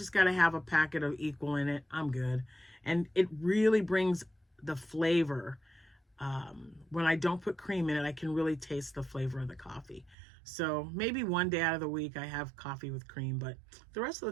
got to have a packet of equal in it. I'm good. And it really brings the flavor. When I don't put cream in it, I can really taste the flavor of the coffee. So maybe one day out of the week I have coffee with cream, but the rest of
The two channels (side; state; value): left; drops out; at 10.2 s